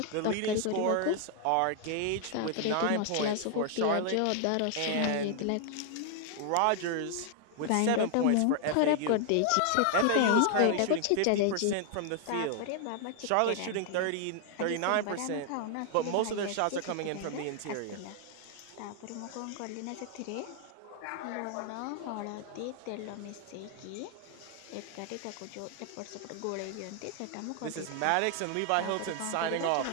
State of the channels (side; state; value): both; different; correlation 0.00